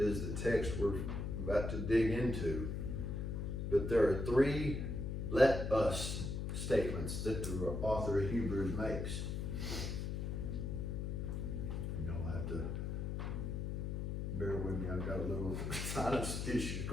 the text we're about to dig into. But there are 3 let us statements that the author of Hebrews makes. And you'll have to sinus issues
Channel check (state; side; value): noise; left; hum, 2 dB below the sound